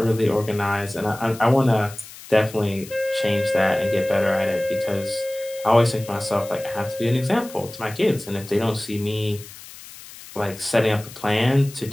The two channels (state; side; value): noise; left; hiss, 17 dB below the sound